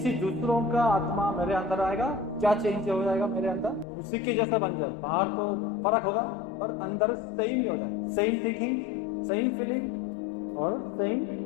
दूसरों का आत्मा मेरे अंदर आएगा, क्या चेंज हो जाएगा मेरे अंदर? उसी के जैसा बन जाए। बाहर तो फर्क होगा पर अंदर सेम ही हो जाए। सेम थिंकिंग, सेम फीलिंग और सेम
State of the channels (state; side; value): drops out; right; at 3.9 s